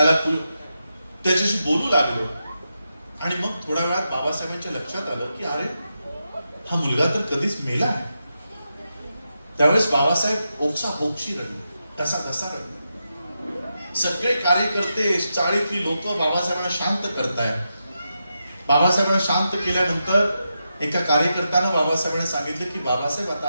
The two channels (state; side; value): inverted; both; correlation -0.87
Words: त्याच्याशी बोलू लागलो. आणि मग थोड्या वेळात बाबासाहेबांच्या लक्षात आलं की अरे हा मुलगा तर कधीच मेला आहे. त्यावेळेस बाबासाहेब ओक्साबोक्षी रडले, कसा रडले. सगळे कार्यकर्ते, चाळीतली लोक बाबासाहेबांना शांत करतायत. बाबासाहेबांना शांत केल्यानंतर एका कार्यकर्त्यानं बाबासाहेबांना सांगितलं की बाबासाहेब आता